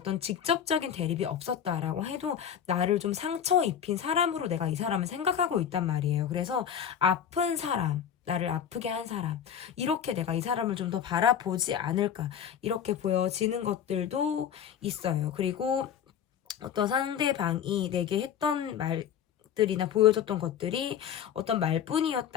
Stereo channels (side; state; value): right; quieter; 8.8 dB